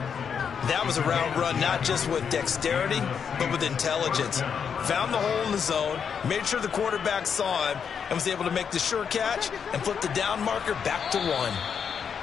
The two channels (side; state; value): right; quieter; 7.0 dB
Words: That was a route run not just with dexterity, but with intelligence. Found the hole in the zone, made sure the quarterback saw him, and was able to make the sure catch and flip the down marker back to 1.